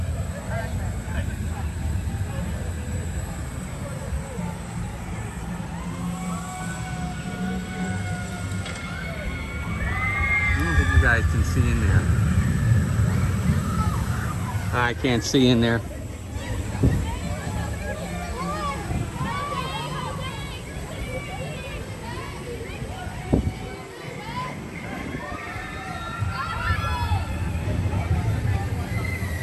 I don't think you guys can see in there. I can't see in there.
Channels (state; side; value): identical; both; correlation 1.00